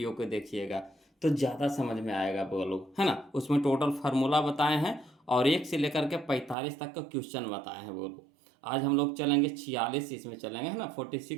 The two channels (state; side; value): drops out; left; at 6.6 s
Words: को देखिएगा तो ज़्यादा समझ में आएगा बगो लोग है ना। उसमें टोटल फार्मूला बताए हैं और 1 से लेकर के 45 तक का क्वेश्चन बताए हैं बगो लोग। आज हम लोग चलेंगे 46, इसमें चलेंगे है ना,